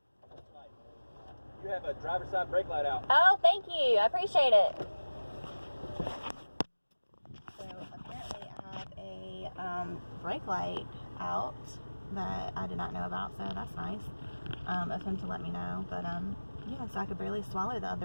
You have a driver's side brake light out. Oh, thank you. I appreciate it. So apparently I have a brake light out that I did not know about, so that's nice of him to let me know. But yeah, so I could barely swallow the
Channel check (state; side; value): inverted; both; correlation -1.00